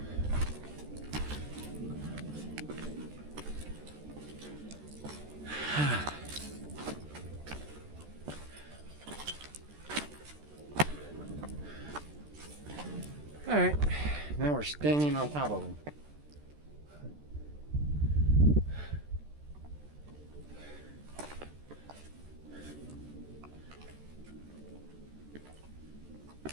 All right, now we're standing on top of them.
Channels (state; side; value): late; left; 13 ms